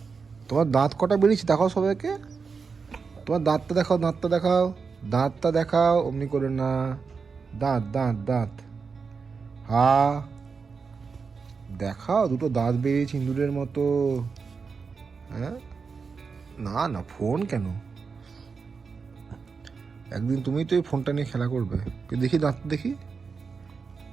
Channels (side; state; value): left; quieter; 5.2 dB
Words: তোমার দাঁত কটা বেরিয়েছে দেখাও সবাইকে। তোমার দাঁতটা দেখাও, দাঁতটা দেখাও, দাঁতটা দেখাও। অমনি করে না, দাঁত দাঁত দাঁত। দেখাও, দুটো দাঁত বেরিয়েছে ইঁদুরের মতো। হ্যাঁ, না না ফোন কেন? একদিন তুমি তো এই ফোনটা নিয়ে খেলা করবে। দেখি দাঁত দেখি,